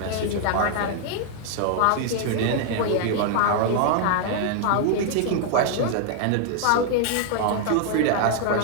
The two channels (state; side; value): different; both; correlation 0.00